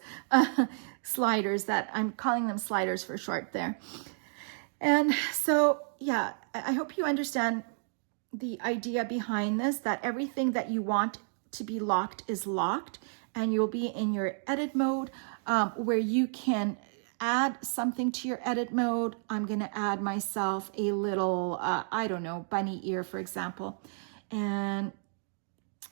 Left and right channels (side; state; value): left; silent; digital silence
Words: sliders, that I'm calling them sliders for short there. And so, yeah, I hope you understand the idea behind this, that everything that you want to be locked is locked, and you'll be in your edit mode where you can add something to your edit mode. I'm going to add myself a little, bunny ear, for example, and